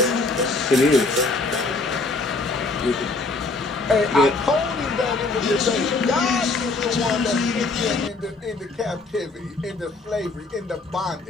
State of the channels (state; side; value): quieter; right; 3.5 dB